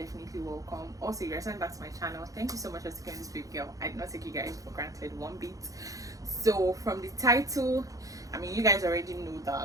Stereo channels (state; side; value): late; left; 0.17 ms